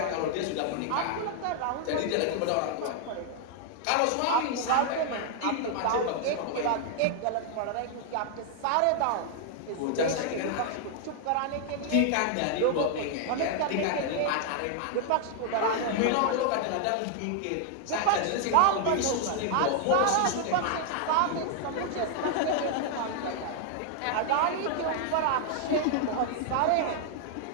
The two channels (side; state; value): both; different; correlation 0.00